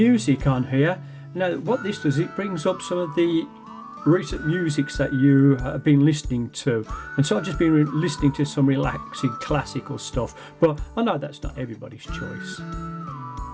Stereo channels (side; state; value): both; identical; correlation 1.00